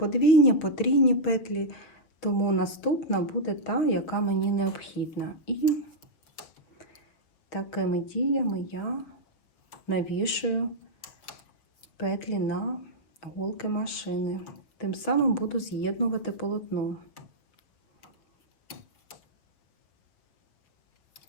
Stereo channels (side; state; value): right; late; 6.4 ms